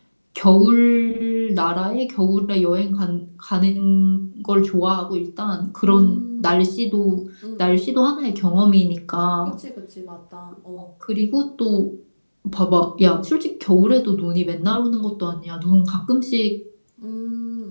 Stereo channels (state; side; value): inverted; both; correlation -1.00